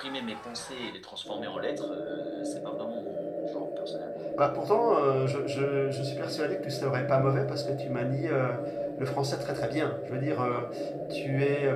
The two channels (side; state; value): both; identical; correlation 1.00